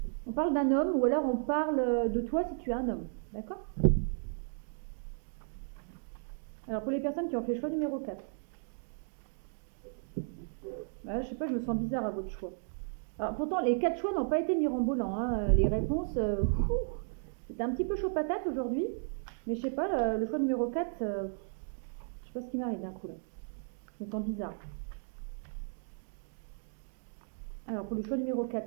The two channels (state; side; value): silent; left; digital silence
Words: d'un homme ou alors on parle de toi si tu es un homme. D'accord. Alors pour les personnes qui ont fait choix numéro 4, bah, je sais pas, je me sens bizarre à votre choix. Alors pourtant les 4 choix n'ont pas été mirobolants, hein. Les réponses, c'était un petit peu chaud patate aujourd'hui. Mais je sais pas, le choix numéro 4, je sais pas ce qui m'arrive d'un coup là. Je me sens bizarre. Alors pour le choix numéro